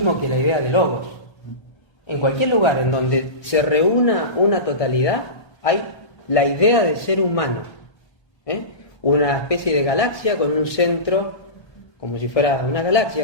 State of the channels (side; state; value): right; late; 1.2 ms